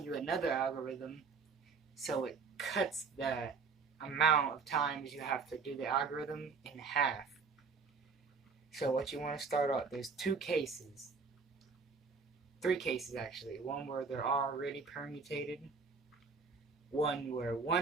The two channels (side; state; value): left; quieter; 5.0 dB